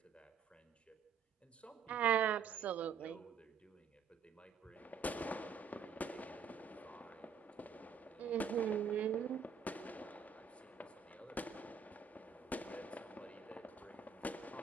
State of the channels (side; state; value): left; quieter; 6.4 dB